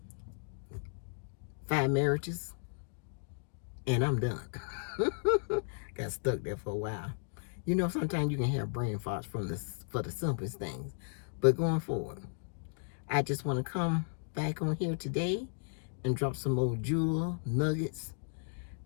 5 marriages, and I'm done. Got stuck there for a while. You know, sometimes you can have brain farts for the simplest things. But going forward, I just want to come back on here today and drop some more jewel nuggets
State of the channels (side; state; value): right; silent; digital silence